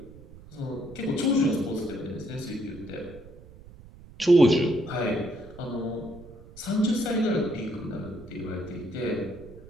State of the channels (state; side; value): noise; right; rumble, 19 dB below the sound